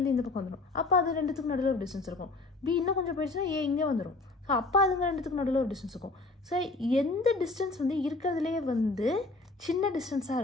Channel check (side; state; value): right; quieter; 3.3 dB